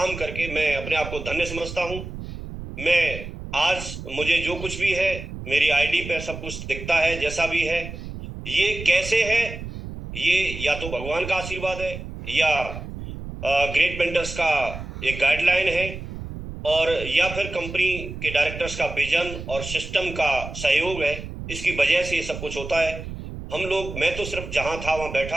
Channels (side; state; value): right; noise; rumble, 9 dB below the sound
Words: करके मैं अपने आप को धन्य समझता हूं। मैं आज, मुझे जो कुछ भी है, मेरी आईडी पे सब कुछ दिखता है जैसा भी है। ये कैसे है, ये या तो भगवान का आशीर्वाद है या ग्रेट मेंटर्स का एक गाइडलाइन है, और या फिर कंपनी के डायरेक्टर्स का विजन और सिस्टम का सहयोग है। इसकी वजह से ये सब कुछ होता है। हम लोग, मैं तो सिर्फ जहां था वहां बैठा